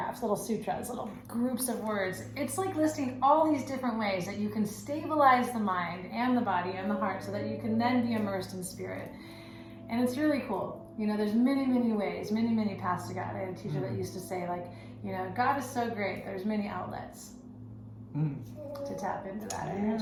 little sutras, little groups of words, it's like listing all these different ways that you can stabilize the mind and the body and the heart so that you can then be immersed in spirit. And it's really cool. There's many, many ways, many, many paths to God. I had a teacher that used to say, like, God is so great, there's many outlets to tap into that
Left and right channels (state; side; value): identical; both; correlation 1.00